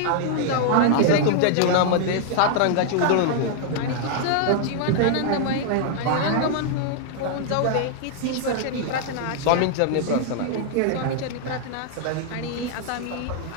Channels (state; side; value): different; both; correlation -0.01